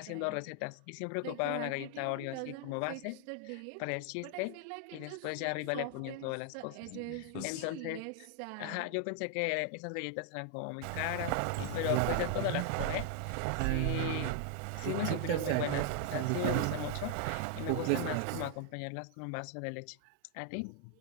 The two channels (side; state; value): both; different; correlation 0.00